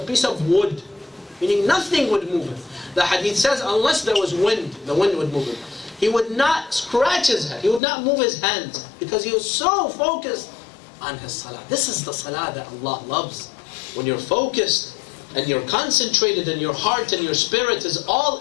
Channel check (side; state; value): right; drops out; at 7.8 s